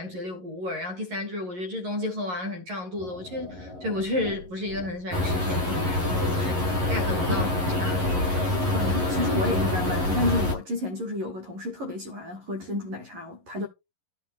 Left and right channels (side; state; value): left; late; 11 ms